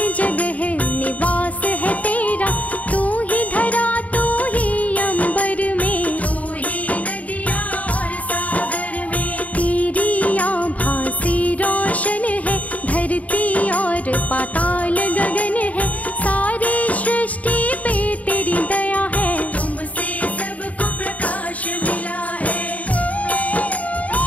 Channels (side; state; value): right; late; 0.070 ms